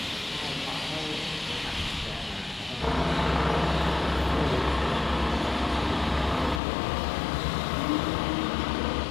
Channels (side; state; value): right; drops out; at 6.6 s